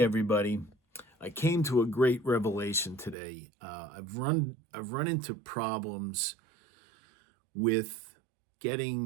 everybody. I came to a great revelation today. I've run into problems with getting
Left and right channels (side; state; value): left; drops out; at 3.2 s